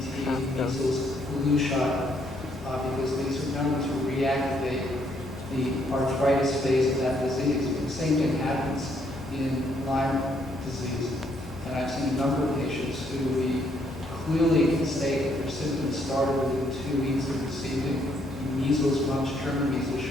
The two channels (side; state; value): both; normal; correlation 0.71